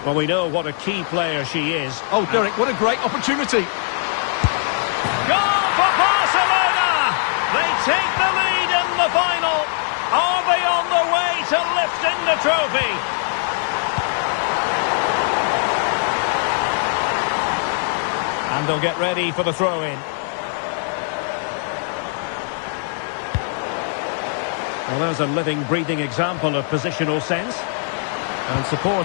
Well, we know what a key player she is. Oh, Derek, what a great opportunity. Goal for Barcelona! They take the lead in the final. Are they on the way to lifting the trophy? And they'll get ready for the throw-in. Well, there's a living, breathing example of positional sense. And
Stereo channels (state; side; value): silent; right; 65 dB below the other